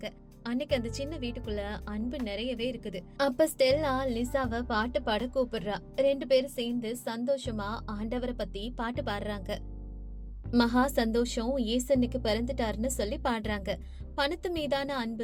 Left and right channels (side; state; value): both; identical; correlation 1.00